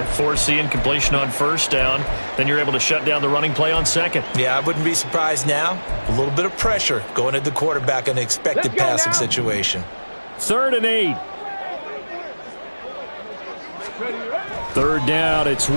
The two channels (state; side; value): inverted; both; correlation -1.00